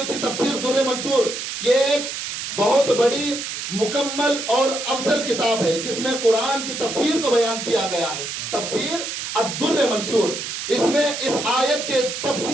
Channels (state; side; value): noise; right; hiss, 5 dB below the sound